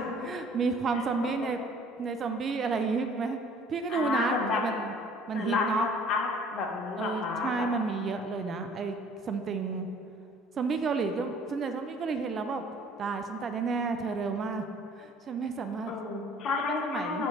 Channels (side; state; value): both; normal; correlation 0.53